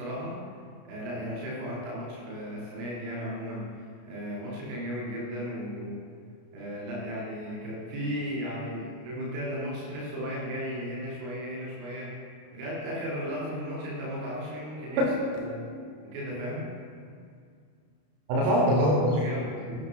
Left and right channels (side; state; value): left; late; 33 ms